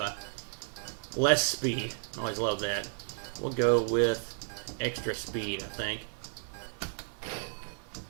I? Less speed. I always love that. We'll go with extra speed, I think,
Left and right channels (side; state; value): left; silent; digital silence